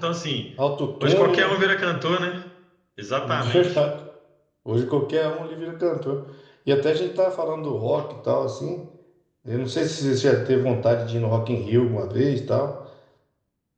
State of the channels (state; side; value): identical; both; correlation 1.00